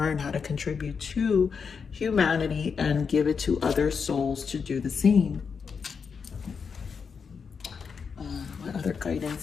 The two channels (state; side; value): quieter; right; 5.9 dB